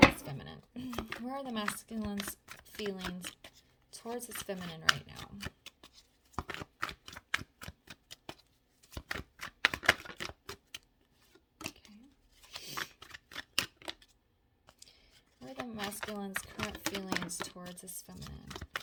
his feminine? Where are the masculine's feelings towards his feminine right now? Okay. Where are the masculine's current feelings towards his feminine?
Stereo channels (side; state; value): both; identical; correlation 1.00